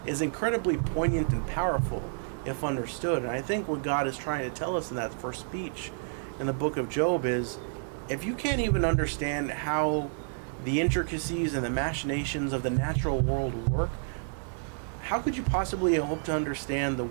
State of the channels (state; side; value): silent; left; digital silence